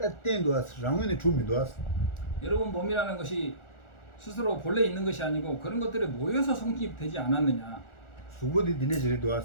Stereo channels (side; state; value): right; late; 1.4 ms